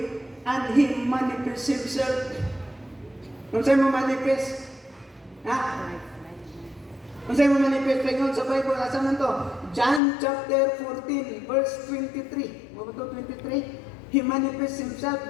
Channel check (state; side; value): drops out; right; at 10.0 s